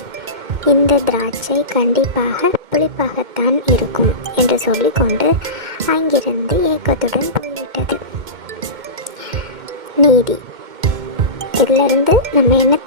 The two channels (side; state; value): left; late; 2.1 ms